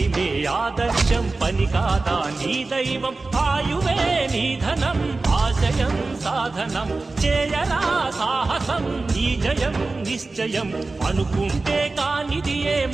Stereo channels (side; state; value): left; quieter; 3.5 dB